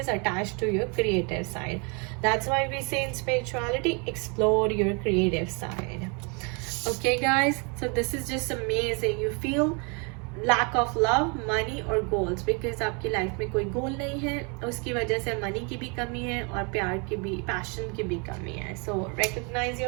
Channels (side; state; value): left; quieter; 33.6 dB